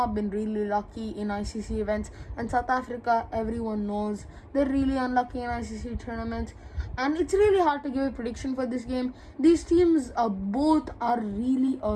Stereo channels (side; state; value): both; identical; correlation 1.00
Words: been really lucky in ICC events. And South Africa, everyone knows, they're really unlucky in ICC tournaments. And it's really hard to give a prediction for this game. These teams both are really